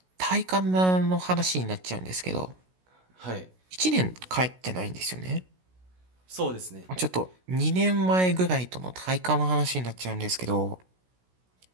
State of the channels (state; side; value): late; left; 16 ms